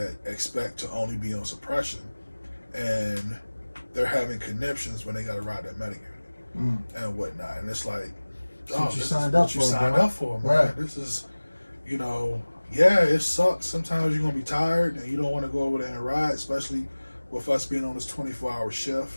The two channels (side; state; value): both; inverted; correlation -1.00